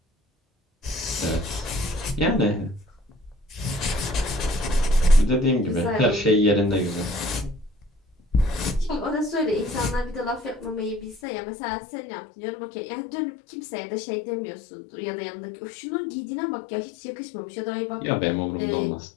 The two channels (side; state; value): right; drops out; at 11.2 s